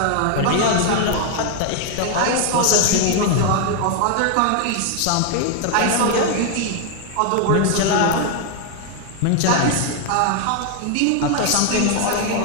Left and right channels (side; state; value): both; different; correlation 0.01